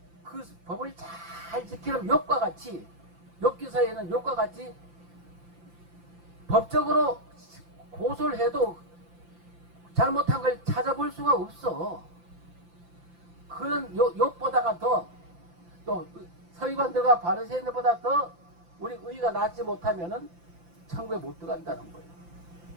그 법을 잘 지키는 욥과 같이 욥기서에는 욥과 같이 법적으로 고소를 해도 잘못한 걸 찾아볼 수가 없어. 그런 욥보다가 더 또 서기관들과 바리새인들보다 더 우리 의가 낫지 못하면은 천국에 못 들어간다는 거예요.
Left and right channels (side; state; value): left; late; 5.8 ms